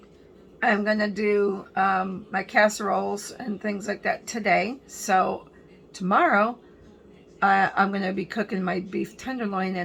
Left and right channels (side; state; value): both; identical; correlation 1.00